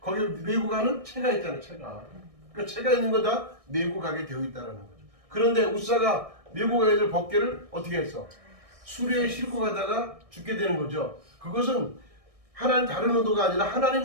거기 메고 가는 채가 있잖아요. 채가. 그러니까 채가 있는 거 다 메고 가게 되어 있다라는 거죠. 그런데 우사가 메고 가야 될 법궤를 어떻게 했어? 수레에 싣고 가다가 죽게 되는 거죠. 그것은 하나님 다른 의도가 아니라 하나님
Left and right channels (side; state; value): left; late; 1.6 ms